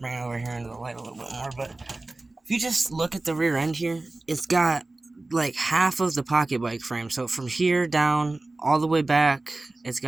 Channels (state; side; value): quieter; left; 3.0 dB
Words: it over here into the light a little bit more. But if you just look at the rear end here, it's got like half of the pocket bike frame. So from here down all the way back, it's